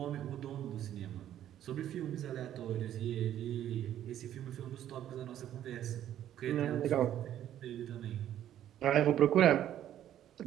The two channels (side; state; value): left; quieter; 11.4 dB